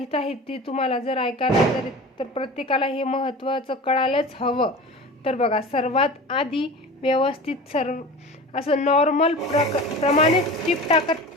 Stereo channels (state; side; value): normal; both; correlation 0.35